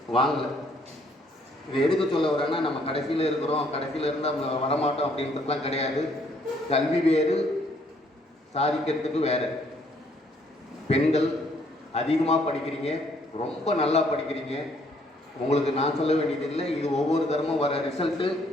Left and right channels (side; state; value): both; normal; correlation 0.66